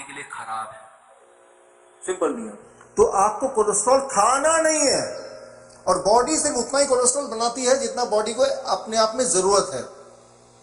के लिए खराब है। सिंपल नियम। तो आपको कोलेस्ट्रॉल खाना नहीं है, और बॉडी सिर्फ उतना ही कोलेस्ट्रॉल बनाती है जितना बॉडी को अपने आप में जरूरत है।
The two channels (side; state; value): both; identical; correlation 1.00